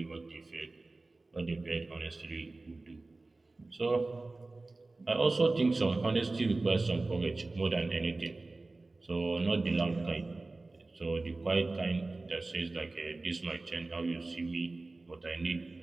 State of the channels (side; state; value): left; quieter; 3.2 dB